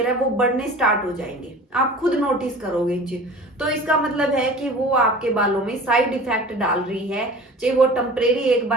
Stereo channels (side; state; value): both; normal; correlation 0.41